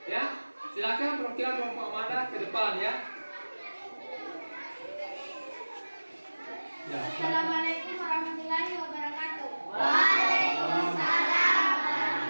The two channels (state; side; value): inverted; both; correlation -1.00